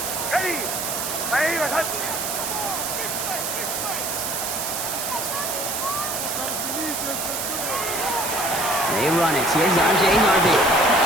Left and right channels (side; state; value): right; noise; hiss, 3 dB below the sound